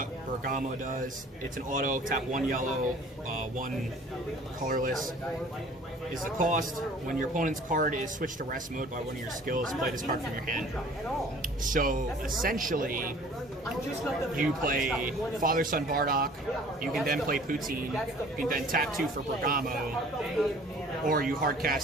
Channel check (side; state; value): both; normal; correlation 0.50